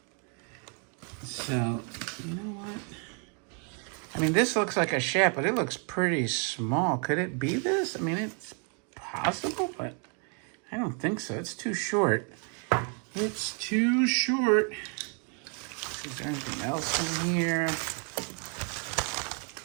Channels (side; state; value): left; quieter; 39.1 dB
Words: So, you know what? I mean, this looks like a shaft, but it looks pretty small. Could it be this? I mean, it's possible, but I don't think so. It's too short. It's too short. Is there anything else in here?